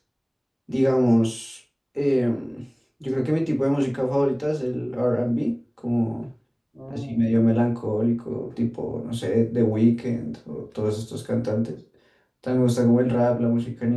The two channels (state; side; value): identical; both; correlation 1.00